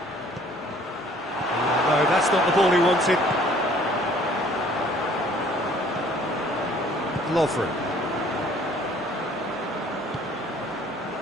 No, that's not the ball he wanted. Lovren.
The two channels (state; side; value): normal; both; correlation 0.56